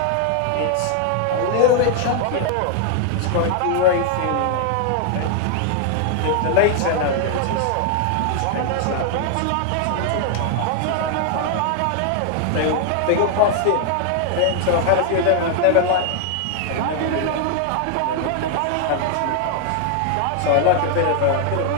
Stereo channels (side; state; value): both; different; correlation 0.00